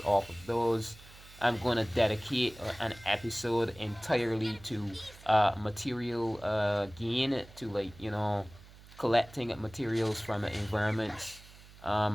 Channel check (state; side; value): noise; right; hum, 21 dB below the sound